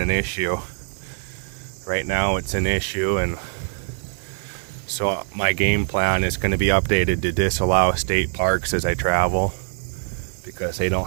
issue. Right now it's an issue, and so my game plan is going to be updated to disallow state parks as I travel, because they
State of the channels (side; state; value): left; silent; digital silence